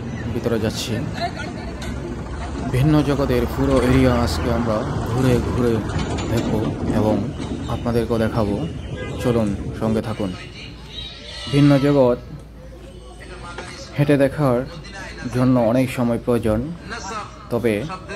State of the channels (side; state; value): both; identical; correlation 1.00